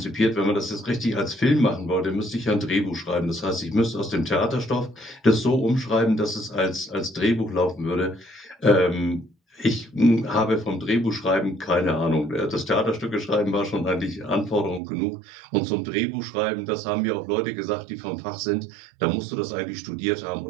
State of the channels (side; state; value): left; drops out; at 14.8 s